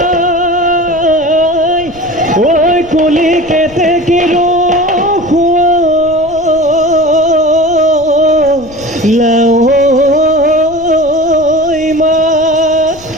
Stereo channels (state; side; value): noise; left; rumble, 22 dB below the sound